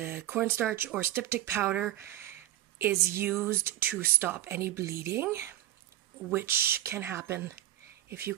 cornstarch or styptic powder is used to stop any bleeding, which can happen if you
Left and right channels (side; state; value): left; quieter; 14.2 dB